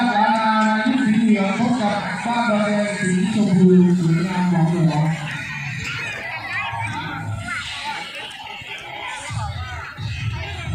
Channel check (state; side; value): identical; both; correlation 1.00